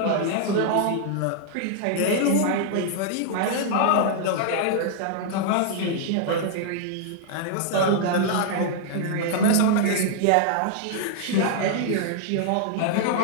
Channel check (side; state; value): both; different; correlation -0.01